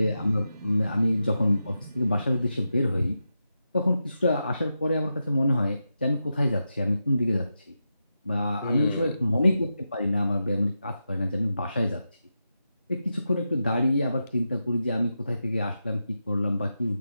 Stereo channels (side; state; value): both; inverted; correlation -0.89